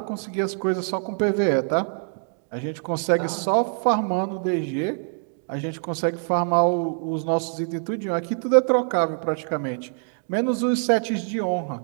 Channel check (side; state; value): left; silent; 62 dB below the other